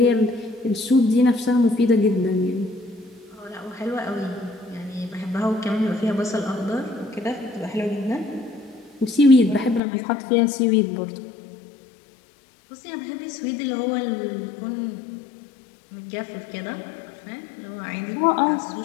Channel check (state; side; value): drops out; right; at 9.8 s